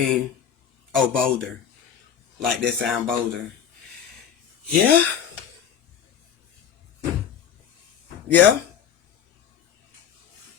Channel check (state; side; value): quieter; right; 8.3 dB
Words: Oh, bolder. Like that sound bolder. Yeah? Yeah?